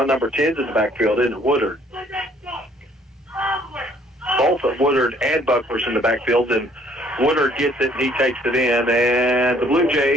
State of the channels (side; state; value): both; normal; correlation 0.61